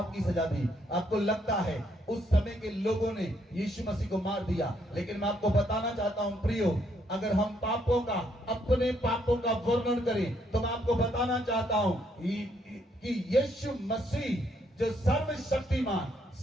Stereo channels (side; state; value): both; normal; correlation 0.72